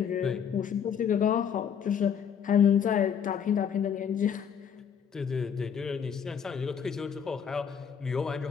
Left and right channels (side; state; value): right; quieter; 7.7 dB